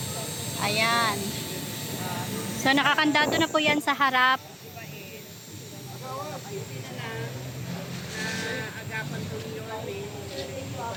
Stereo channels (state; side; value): identical; both; correlation 1.00